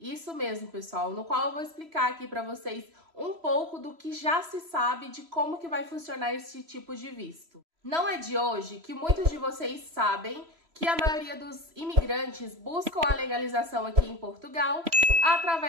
mesmo, pessoal, no qual eu vou explicar aqui para vocês um pouco do que já se sabe de como que vai funcionar esse tipo de visto. Não é de hoje que muitos de vocês sabem que a maioria dos imigrantes buscam a legalização aqui em Portugal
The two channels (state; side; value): late; left; 3.0 ms